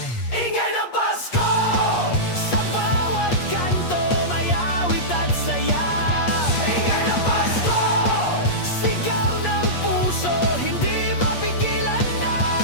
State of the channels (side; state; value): right; late; 8.5 ms